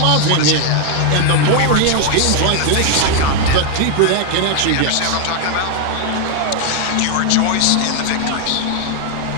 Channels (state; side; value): different; both; correlation 0.00